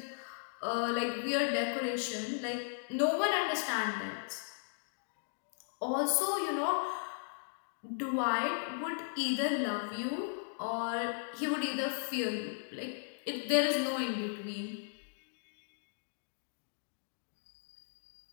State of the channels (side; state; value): right; silent; digital silence